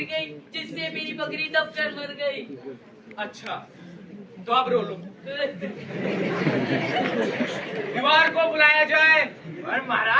गई, जिससे मेरी बकरी दबकर मर गई। अच्छा तो अब रो लो। दीवार को बुलाया जाए। और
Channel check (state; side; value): identical; both; correlation 1.00